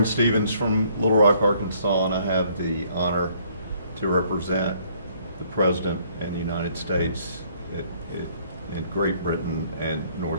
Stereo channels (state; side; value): inverted; both; correlation -0.64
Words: Stevens from Little Rock, Arkansas, and I have the honor to represent the President and the United States in Great Britain and